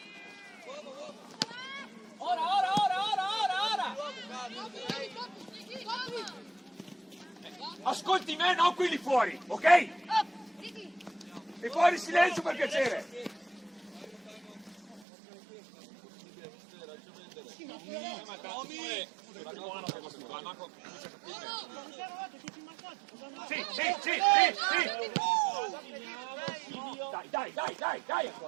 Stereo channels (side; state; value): left; drops out; at 15.1 s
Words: Ora! Ascolti me, non quelli fuori, ok? E fuori silenzio per piacere! Sì!